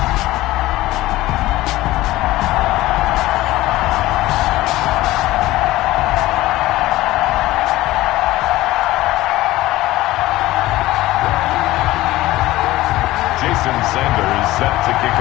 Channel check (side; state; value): right; quieter; 17.1 dB